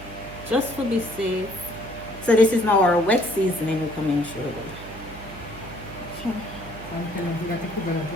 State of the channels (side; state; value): right; noise; hum, 14 dB below the sound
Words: just to be safe. So this is now our wet seasoning we come in through.